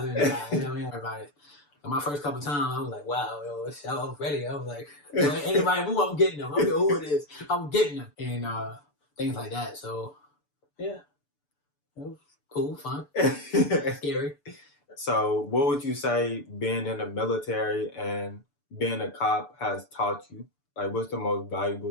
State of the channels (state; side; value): late; right; 6.9 ms